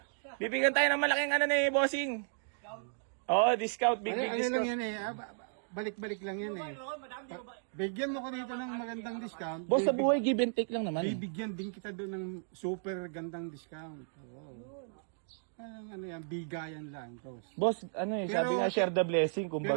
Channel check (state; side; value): silent; left; digital silence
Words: Bibigyan tayo ng malaking ano ni bossing. Oo, discount. Big Ano lang discount. yan eh. Balik-balik lang yan eh. Bigyan mo ko dito ng magandang discount. Boss, sa buhay, give and take lang naman. Bibigyan din kita doon ng super gandang discount. Oo. Ano yan, bigayan lang. Boss. Boss, ano eh, sabi nga share the blessing, Pero